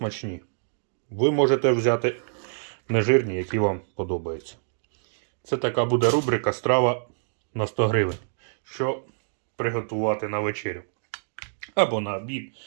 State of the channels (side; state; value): left; silent; digital silence